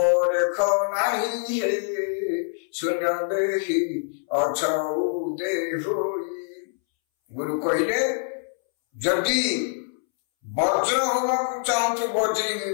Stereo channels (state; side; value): silent; right; 62 dB below the other